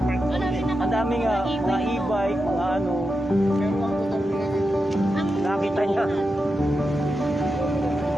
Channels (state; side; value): normal; both; correlation 0.89